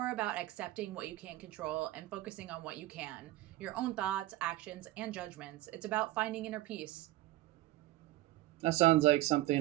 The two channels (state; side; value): quieter; left; 16.4 dB